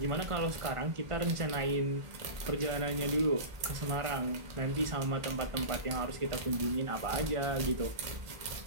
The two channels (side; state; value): left; late; 1.5 ms